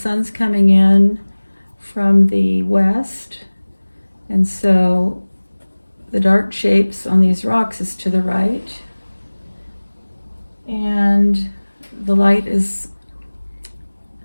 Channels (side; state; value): both; inverted; correlation -1.00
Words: coming in from the west, and so the dark shapes on these rocks is to the right, and the light is